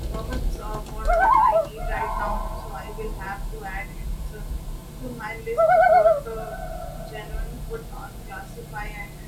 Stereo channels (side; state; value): both; identical; correlation 1.00